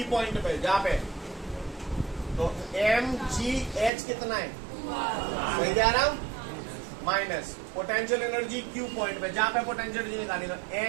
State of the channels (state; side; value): drops out; left; at 3.9 s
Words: पॉइंट पे, जहाँ पे तो एम जी एच कितना है? सही जा रहा हूँ? Minus potential energy Q point पे, जहाँ पे पोटेंशियल एनर्जी निकालनी, तो